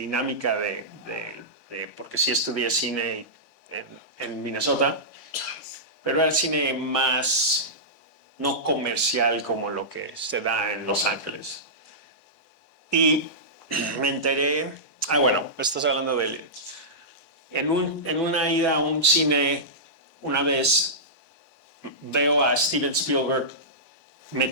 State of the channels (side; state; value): both; normal; correlation -0.15